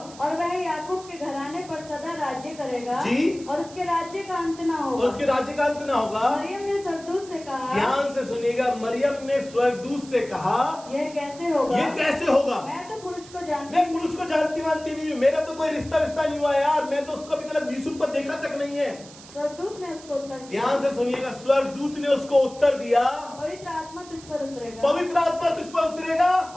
और वह याकूब के घराने पर सदा राज्य करेगा, जी, और उसके राज्य का अंत न और होगा। उसके राज्य का अंत ना होगा। मरियम ने स्वर्गदूत से कहा, ध्यान से सुनिएगा, मरियम ने स्वर्गदूत से कहा यह कैसे होगा? ये कैसे होगा? मैं तो पुरुष को जानती मैं पुरुष को जानती मानती नहीं हूँ, मेरा तो कोई रिश्ता नहीं हुआ यार, मैं तो उसको अभी तक यूसुफ पर देखा तक नहीं है। स्वर्गदूत ने उसको उत्तर दिया, ध्यान से सुनिएगा, स्वर्गदूत ने उसको उत्तर दिया पवित्र आत्मा तुझ पर उतरेगा, पवित्र आत्मा तुझ पर उतरेगा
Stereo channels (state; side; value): noise; right; hiss, 19 dB below the sound